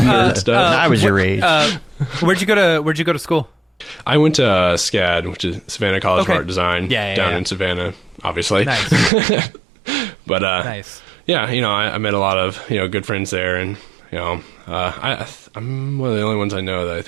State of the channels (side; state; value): left; drops out; at 9.1 s